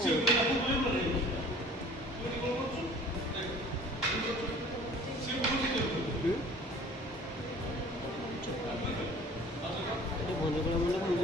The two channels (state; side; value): normal; both; correlation 0.49